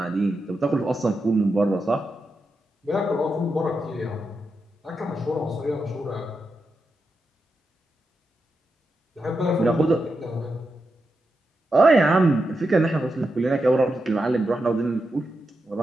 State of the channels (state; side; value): normal; both; correlation 0.87